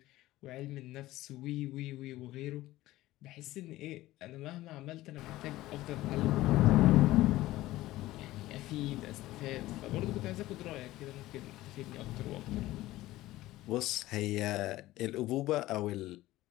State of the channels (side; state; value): right; quieter; 16.7 dB